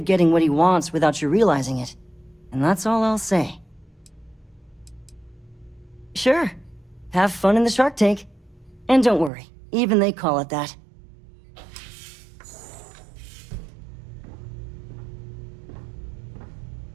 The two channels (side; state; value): left; drops out; at 9.3 s